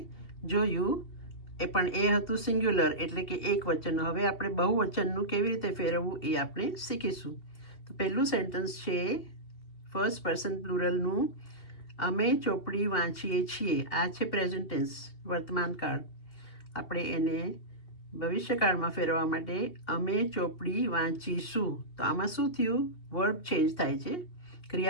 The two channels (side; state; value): right; late; 2.7 ms